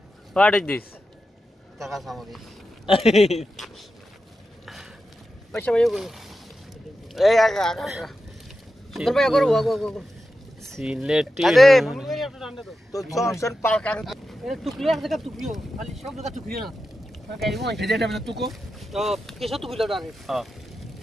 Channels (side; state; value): both; normal; correlation 0.90